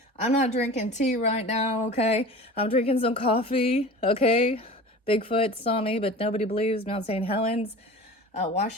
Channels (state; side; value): normal; both; correlation 0.37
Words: I'm not drinking tea right now, okay? I'm drinking some coffee, okay? Bigfoot saw me, but nobody believes. Mount St. Helens,